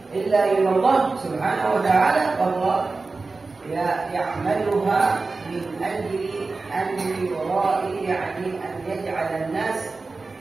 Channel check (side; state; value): left; quieter; 3.8 dB